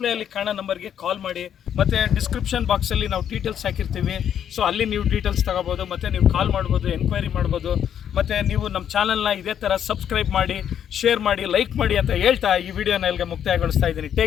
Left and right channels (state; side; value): quieter; right; 9.3 dB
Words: ಕಾಣೋ ನಂಬರ್ಗೆ ಕಾಲ್ ಮಾಡಿ, ಮತ್ತು ಡಿಸ್ಕ್ರಿಪ್ಷನ್ ಬಾಕ್ಸಲ್ಲಿ ನಾವು ಡೀಟೇಲ್ಸ್ ಹಾಕಿರ್ತೀವಿ. ಸೊ ಅಲ್ಲಿ ನೀವು ಡೀಟೇಲ್ಸ್ ತೊಗೋಬೋದು, ಮತ್ತು ನೀವು ಕಾಲ್ ಮಾಡ್ಬೋದು, ಎನ್ಕ್ವೈರಿ ಮಾಡ್ಬೋದು. ಮತ್ತು ನೀವು ನಮ್ಮ ಚಾನಲ್ನ ಇದೇ ಥರ ಸಬ್ಸ್ಕ್ರೈಬ್ ಮಾಡಿ, ಶೇರ್ ಮಾಡಿ, ಲೈಕ್ ಮಾಡಿ ಅಂತ ಹೇಳ್ತಾ ಈ ವಿಡಿಯೋನ ಇಲ್ಲಿಗೆ ಮುಕ್ತಾಯಗೊಳಿಸ್ತಾ ಇದ್ದೀನಿ.